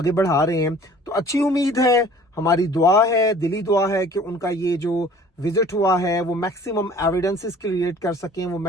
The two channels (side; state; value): both; normal; correlation 0.50